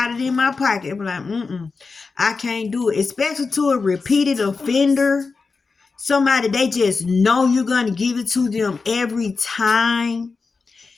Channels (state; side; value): quieter; right; 4.4 dB